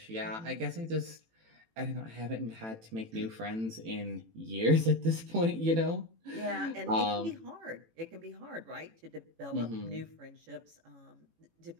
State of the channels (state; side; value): late; left; 18 ms